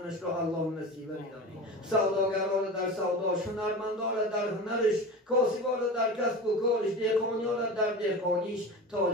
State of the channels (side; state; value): both; normal; correlation 0.31